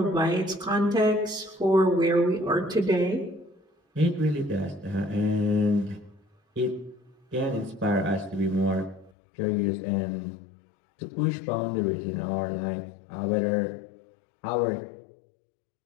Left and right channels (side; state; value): right; drops out; at 9.1 s